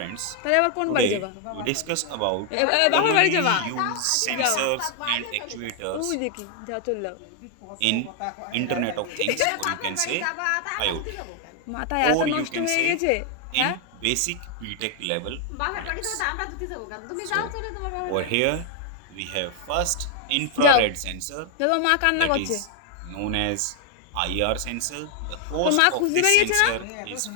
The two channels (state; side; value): different; both; correlation 0.00